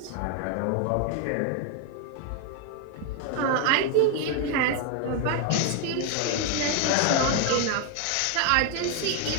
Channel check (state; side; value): different; both; correlation 0.01